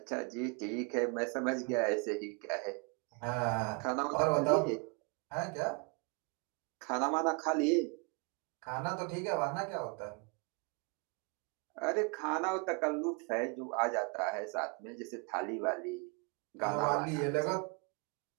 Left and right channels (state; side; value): quieter; left; 32.1 dB